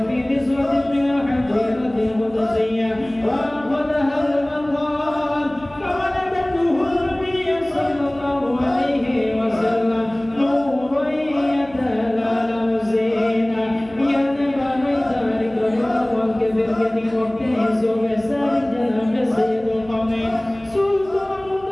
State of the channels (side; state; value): right; noise; hum, 23 dB below the sound